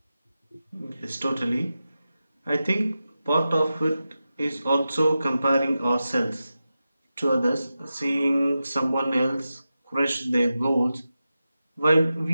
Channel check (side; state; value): both; inverted; correlation -0.92